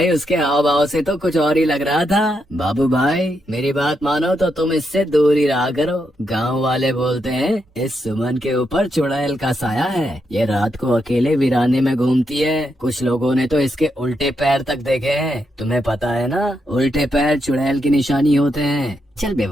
उसके हाव भाव से तो कुछ और ही लग रहा था। बाबू भाई मेरी बात मानो तो तुम इससे दूर ही रहा करो। गांव वाले बोलते हैं इस सुमन के ऊपर चुड़ैल का साया है। ये रात को अकेले वीराने में घूमती है। कुछ लोगों ने तो इसके उल्टे पैर तक देखे हैं। तुम्हें पता है ना, उल्टे पैर चुड़ैल की निशानी होते हैं। चल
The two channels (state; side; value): normal; both; correlation 0.82